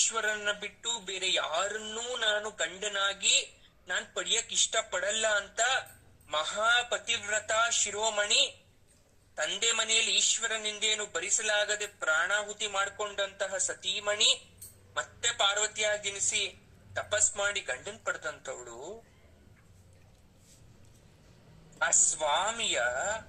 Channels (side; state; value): both; identical; correlation 1.00